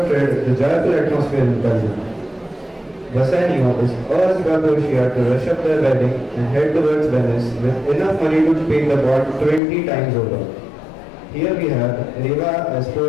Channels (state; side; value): drops out; right; at 9.6 s